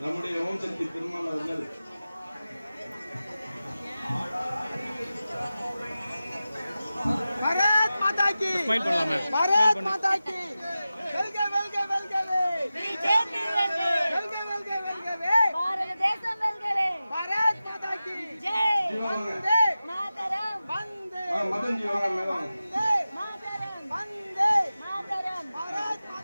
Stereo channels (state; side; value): inverted; both; correlation -0.94